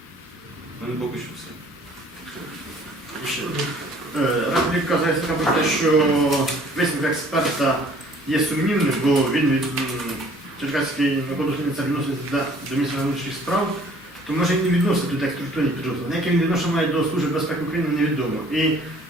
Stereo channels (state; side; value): normal; both; correlation 0.56